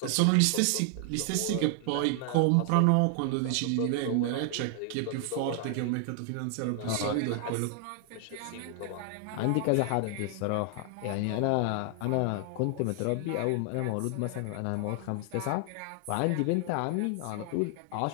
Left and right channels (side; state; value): both; different; correlation 0.00